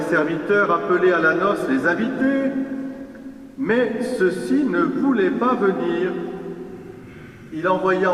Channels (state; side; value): identical; both; correlation 1.00